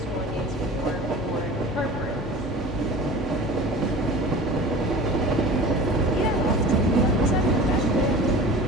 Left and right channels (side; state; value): both; normal; correlation 0.39